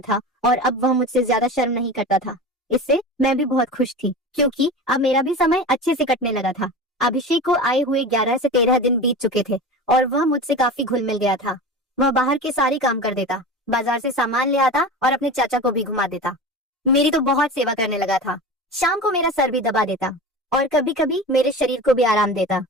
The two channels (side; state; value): both; normal; correlation 0.31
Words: था और अब वह मुझसे ज्यादा शर्म नहीं करता था। इससे मैं भी बहुत खुश थी, क्योंकि अब मेरा भी समय अच्छे से कटने लगा था। अभिषेक को आए हुए 11 से 13 दिन बीत चुके थे और वह मुझसे काफी घुल मिल गया था। वह बाहर के सारे काम कर देता, बाजार से सामान ले आता और अपने चाचा को भी घुमा देता। मेरी तो बहुत सेवा करने लगा था। शाम को मेरा सर भी दबा देता और कभी कभी मेरे शरीर को भी आराम देता।